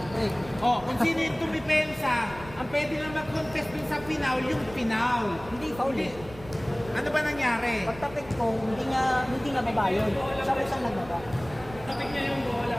Oh, kung sino yung tumipensa, ang pwede lang mag-contest dun sa Pinaw, yung Pinaw. Hindi, foul eh. Ano ba nangyari? Pagtapik ko, hindi nga baba yun. Siya ko siyang nagbaba. Tapik niya yung bola.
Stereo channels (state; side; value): noise; right; rumble, 17 dB below the sound